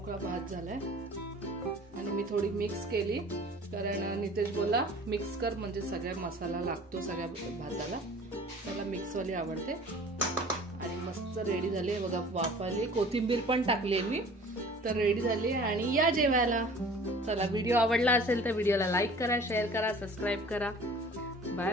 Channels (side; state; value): both; normal; correlation 0.47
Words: भात झालाय आणि मी थोडी मिक्स केली कारण नितेश बोला मिक्स कर म्हणजे सगळ्या मसाला लागतो सगळ्या भाताला. त्याला मिक्सवाली आवडते. आणि मस्त रेडी झाली आहे बघा. वाफ आली, कोथिंबीर पण टाकली मी. तर रेडी झाली आणि या जेवायला. चला व्हिडिओ आवडला असेल तर व्हिडिओला लाईक करा, शेअर करा, सबस्क्राईब करा. Bye